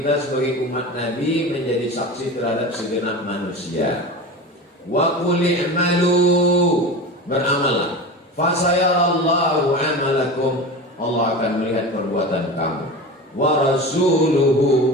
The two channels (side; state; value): both; normal; correlation 0.29